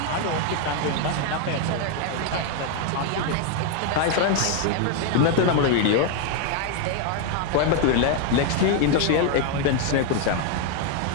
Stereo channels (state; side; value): different; both; correlation 0.01